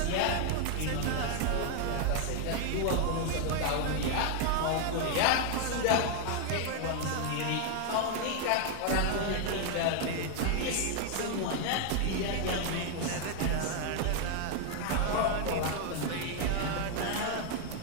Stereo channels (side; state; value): both; different; correlation 0.00